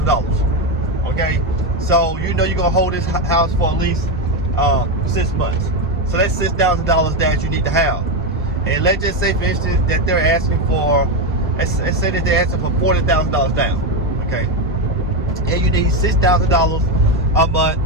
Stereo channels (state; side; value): normal; both; correlation 0.10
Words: Okay, so you know you're gonna hold this house for at least 6 months. So that's $6,000 that you need to have. And let's just say, for instance, that they're asking for let's say that they're asking for $40,000 down, okay, and you need $6,000 a month